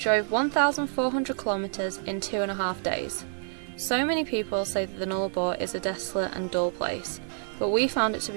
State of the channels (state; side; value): silent; left; digital silence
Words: 1,400 kilometres in 2.5 days. So many people say that the Nullarbor is a desolate and dull place, but we found it to